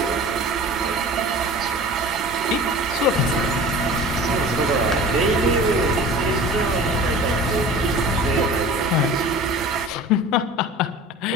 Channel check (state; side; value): normal; both; correlation 0.39